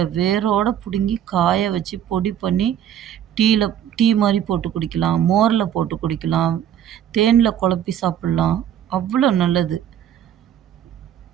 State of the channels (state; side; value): quieter; left; 10.2 dB